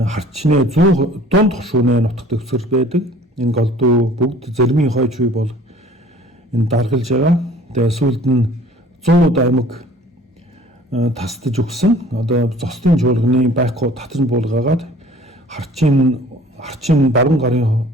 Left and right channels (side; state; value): both; normal; correlation 0.50